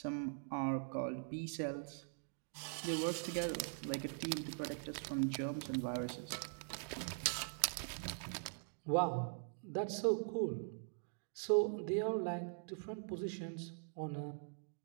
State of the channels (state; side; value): silent; left; digital silence